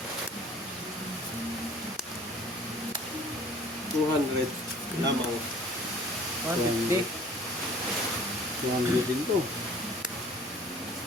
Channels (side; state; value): both; normal; correlation 0.50